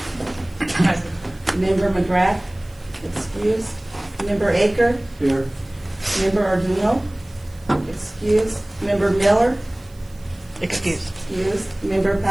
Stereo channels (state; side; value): noise; right; hiss, 28 dB below the sound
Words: Member McGrath? Excused. Member Aker? Here. Member Arduino? Excused. Member Miller? Excuse. Excused. Member